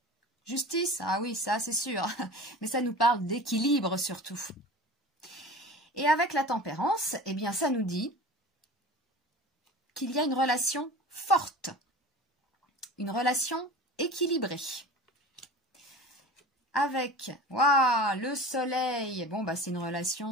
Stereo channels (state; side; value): normal; both; correlation 0.37